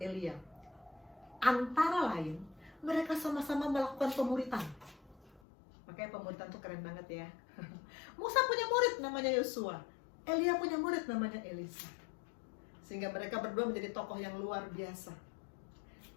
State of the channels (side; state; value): right; drops out; at 5.4 s